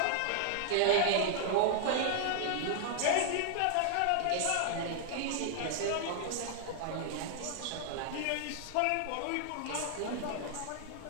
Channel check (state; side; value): different; both; correlation 0.00